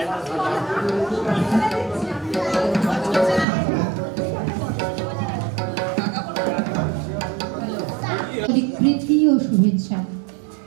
প্রীতি ও শুভেচ্ছা।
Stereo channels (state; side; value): drops out; left; at 3.5 s